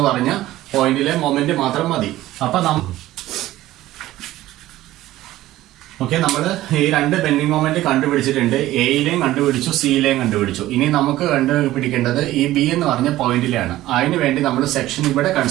പറഞ്ഞ പോയിന്റിലെ മൊമെന്റ് മാത്രം മതി. അപ്പൊ ഓക്കെ, നമ്മൾ ഈ രണ്ട് ബെൻഡിങ് മൊമെന്റ് കണ്ടുപിടിച്ചിട്ടുണ്ട്. എയിലെയും കണ്ടുപിടിച്ചു, സിയിലെയും കണ്ടുപിടിച്ചു. ഇനി നമുക്ക് കണ്ടുപിടിക്കേണ്ടത് ഈ B എന്ന് പറഞ്ഞ പോയിന്റിലാണ്. അതിനു വേണ്ടി നമ്മൾ സെക്ഷൻ ഇവിടെ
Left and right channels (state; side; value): quieter; left; 15.4 dB